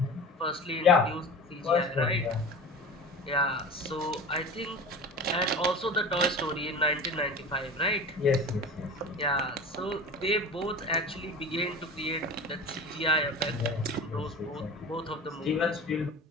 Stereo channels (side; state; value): both; normal; correlation 0.35